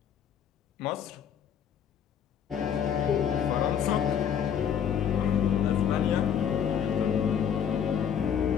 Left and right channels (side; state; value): right; quieter; 8.4 dB